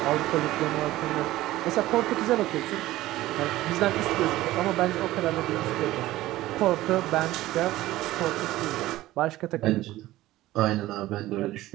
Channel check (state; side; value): quieter; left; 16.3 dB